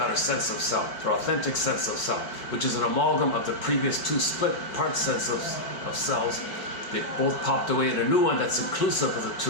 her sense of self, her authentic sense of self, which is an amalgam of the previous two split part sense of selves. They both popped away in a new one that's inclusive of the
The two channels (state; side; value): late; right; 4.5 ms